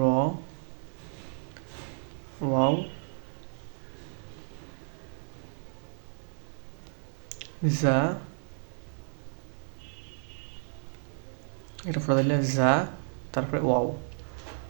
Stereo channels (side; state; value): left; silent; digital silence